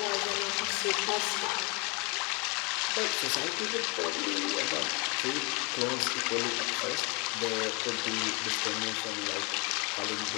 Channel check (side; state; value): right; quieter; 30.4 dB